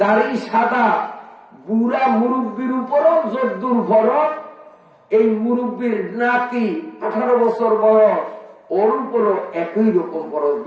দাড়ি সাদা বুড়া মুরব্বীর উপরও যদ্দুর ফরজ, এই মুরব্বীর নাতি 18 বছর বয়স, ওর উপরও একই রকম ফরজ,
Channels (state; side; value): identical; both; correlation 1.00